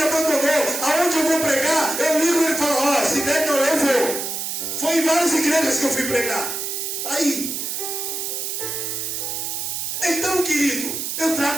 abandonou. Aonde eu vou pregar, eu ligo e ele fala: ó, se der não, eu vou. Foi em várias igrejas que eu fui pregar. Aí. Então, querido, eu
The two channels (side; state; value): right; noise; hiss, 3 dB below the sound